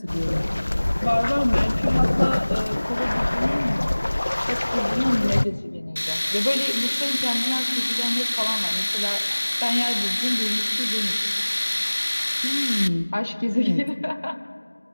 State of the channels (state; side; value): inverted; both; correlation -1.00